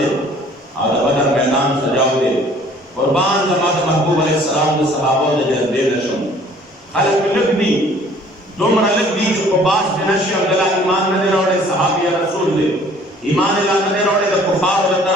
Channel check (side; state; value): both; normal; correlation 0.54